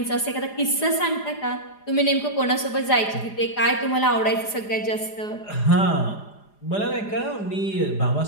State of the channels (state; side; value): late; right; 4.9 ms